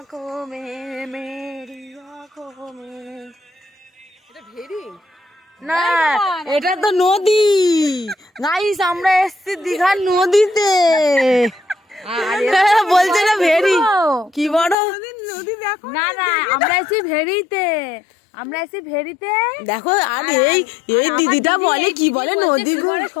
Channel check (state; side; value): drops out; right; at 14.8 s